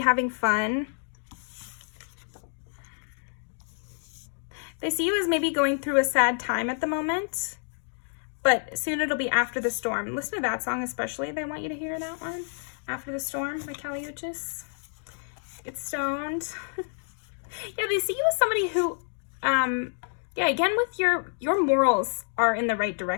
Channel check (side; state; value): right; silent; 59 dB below the other